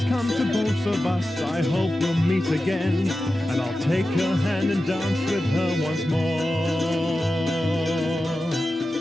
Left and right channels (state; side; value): normal; both; correlation 0.93